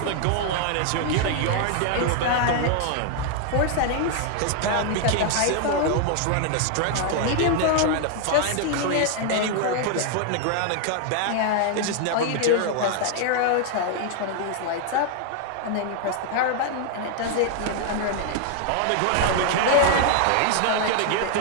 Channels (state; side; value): different; both; correlation 0.00